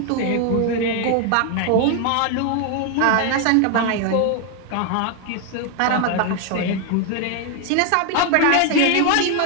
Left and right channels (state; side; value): different; both; correlation 0.01